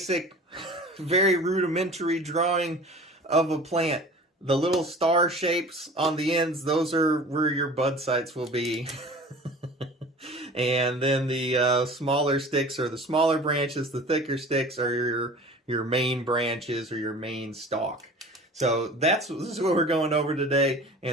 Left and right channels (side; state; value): both; normal; correlation 0.41